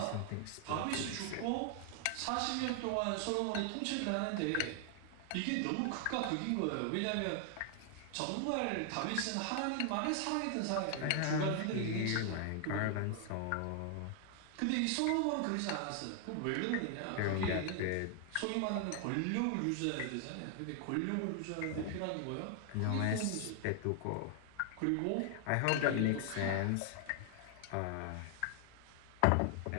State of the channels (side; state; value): both; different; correlation 0.00